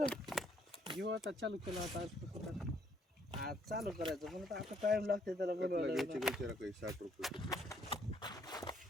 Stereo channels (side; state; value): both; normal; correlation 0.67